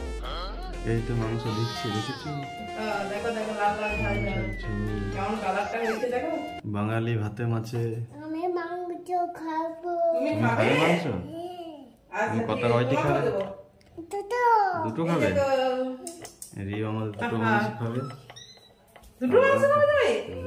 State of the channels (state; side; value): identical; both; correlation 1.00